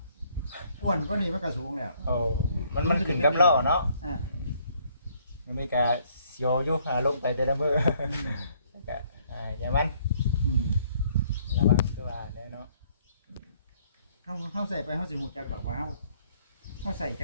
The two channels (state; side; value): inverted; both; correlation -0.64